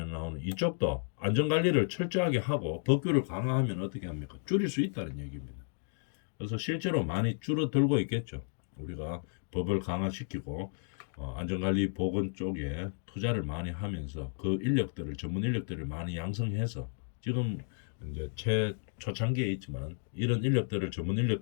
나오는 이쪽도 안전관리를 철저하게 하고 법규를 강화하면 어떻게 합니까? 줄일 수 있다는 얘기입니다. 그래서 실제로 많이 줄어들고 있겠죠. 우리가 법을 강화시키고 안전관리 보건 쪽에 투자를 많이 하면서 그 인력들을 전문 인력들을 많이 양성해서 지금 이제 초창기에 있지만 이런 인력들을 전문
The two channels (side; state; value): right; silent; digital silence